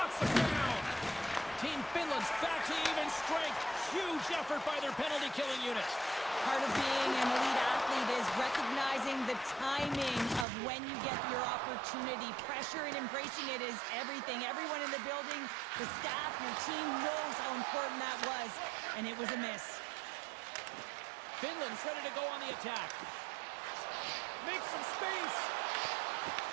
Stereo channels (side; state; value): left; drops out; at 10.5 s